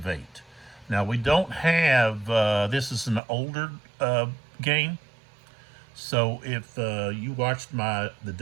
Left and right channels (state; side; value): drops out; left; at 3.2 s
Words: Now we don't have, this is an older game, so if you watched my The